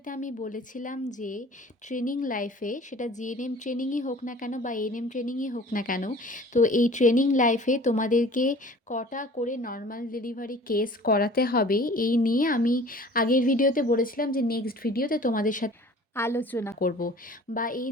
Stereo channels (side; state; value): both; normal; correlation 0.47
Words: আমি বলেছিলাম যে ট্রেনিং লাইফে, সেটা জিএনএম ট্রেনিংই হোক না কেন বা এএনএম ট্রেনিংই হোক না কেন, তো এই ট্রেনিং লাইফে তোমাদেরকে কটা করে নর্মাল ডেলিভারি কেস করাতে হবে এই নিয়ে আমি আগের ভিডিওতে বলেছিলাম যে নেক্সট ভিডিওতে তোমাদের সাথে আলোচনা করব। বা এই